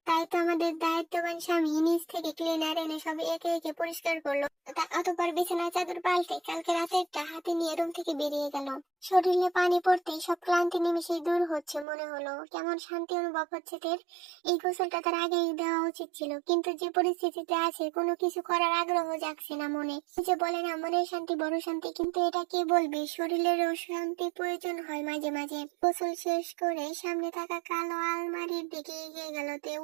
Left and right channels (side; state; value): left; drops out; at 11.9 s